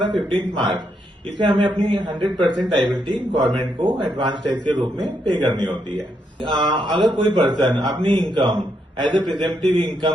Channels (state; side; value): normal; both; correlation 0.78